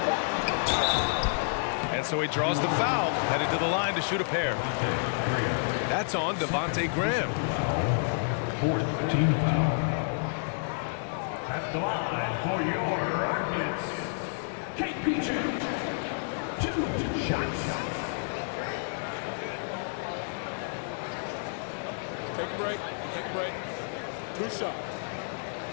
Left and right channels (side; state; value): right; silent; 58 dB below the other